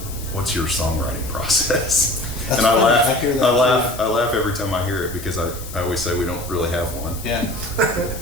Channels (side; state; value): left; noise; hiss, 14 dB below the sound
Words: what's your songwriting process? That's and I funny. laugh. I hear that I laugh every time I hear it because I always say we don't really have one. Yeah.